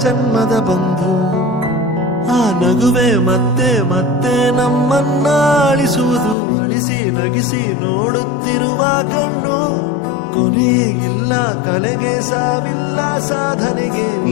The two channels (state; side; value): drops out; right; at 6.4 s